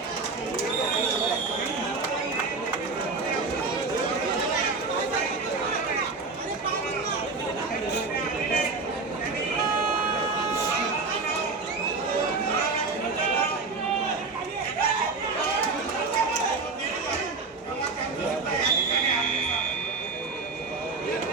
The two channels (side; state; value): left; quieter; 4.1 dB